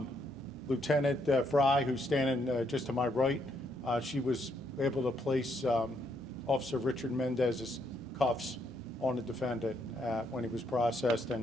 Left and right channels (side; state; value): both; normal; correlation 0.74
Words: Lieutenant Fry, who's standing just to my right, she was able to place Officer Richard Mendez's cuffs on the defendant when he was processed